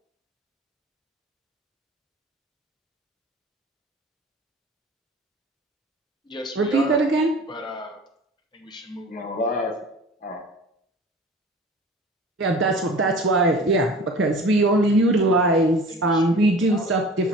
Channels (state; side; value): normal; both; correlation 0.41